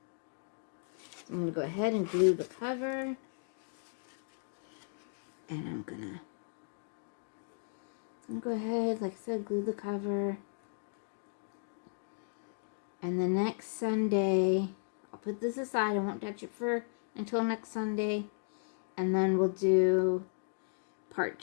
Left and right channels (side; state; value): right; silent; digital silence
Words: I'm going to go ahead and glue the cover. And I'm going to go ahead, like I said, glue the cover. And the next Sunday, I'll put this aside. I won't touch it until next Sunday. And then we'll do part